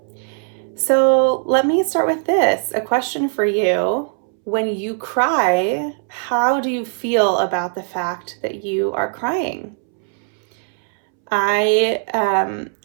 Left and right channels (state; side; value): silent; left; 66 dB below the other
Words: So let me start with this, a question for you. When you cry, how do you feel about the fact that you are crying? I